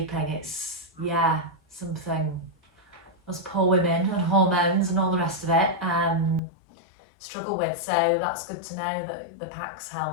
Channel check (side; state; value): right; drops out; at 6.4 s